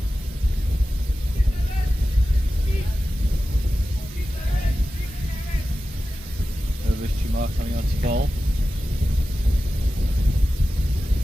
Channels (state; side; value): normal; both; correlation 0.94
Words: Coming on to bowl.